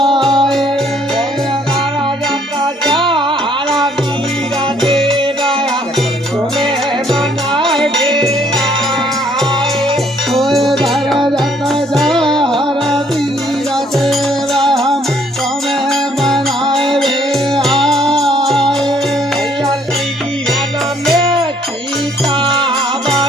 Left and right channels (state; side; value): normal; both; correlation 0.64